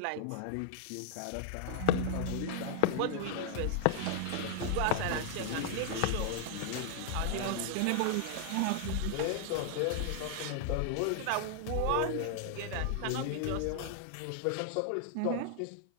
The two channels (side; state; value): both; different; correlation 0.00